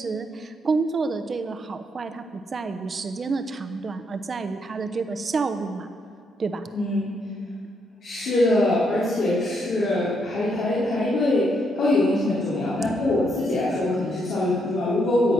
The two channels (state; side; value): normal; both; correlation 0.76